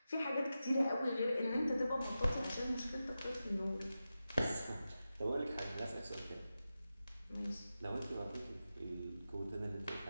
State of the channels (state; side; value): inverted; both; correlation -0.92